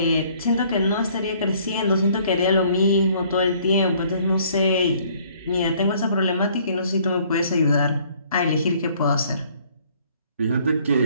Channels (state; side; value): inverted; both; correlation -0.60